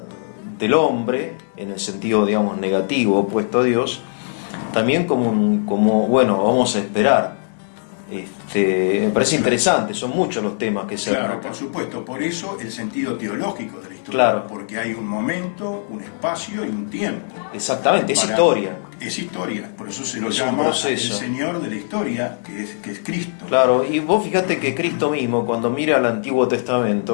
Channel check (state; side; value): silent; right; digital silence